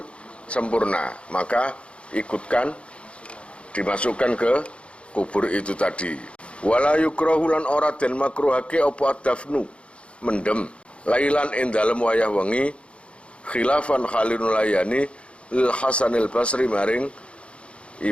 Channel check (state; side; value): late; right; 0.059 ms